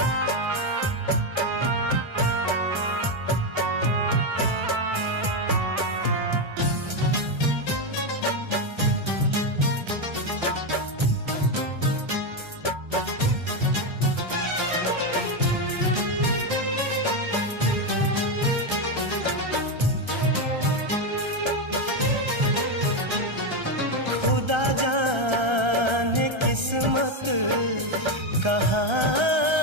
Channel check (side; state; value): left; late; 1.3 ms